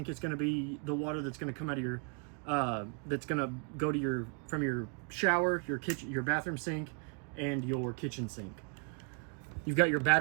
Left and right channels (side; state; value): left; quieter; 38.6 dB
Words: is going to be the water that's going to come out of your that's going to go to from your shower, your kitchen, your bathroom sink, and your kitchen sink. You've got your